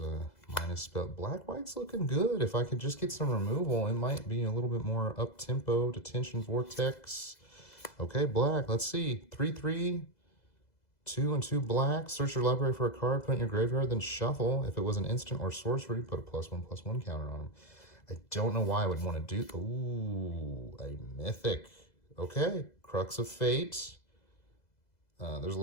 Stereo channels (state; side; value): late; right; 2.0 ms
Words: minus spell. Black-white's looking good. If I could just get some removal, it might be a little bit more up-tempo. Detention Vortex. Okay, black. Let's see. 3/3. 2 and 2 black. Search your library for a card, put it in your graveyard, then shuffle. If it was an instant or sorcery, put a +1/+1 counter on them. I don't know why I would want to do... ooh, a mythic. Okay, Crux of Fate. There's a